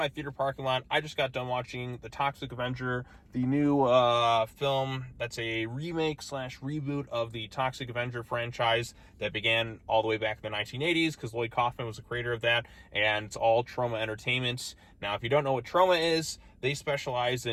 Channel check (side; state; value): both; identical; correlation 1.00